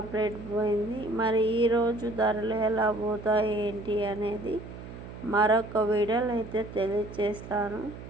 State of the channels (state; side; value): noise; right; hum, 13 dB below the sound